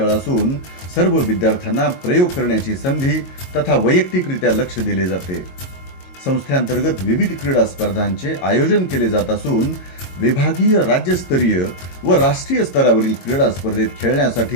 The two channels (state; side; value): late; right; 22 ms